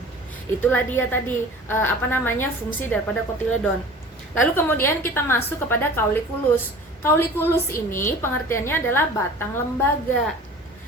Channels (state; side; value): normal; both; correlation 0.42